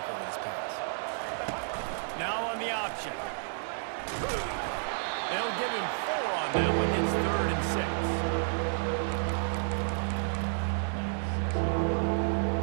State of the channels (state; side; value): silent; left; digital silence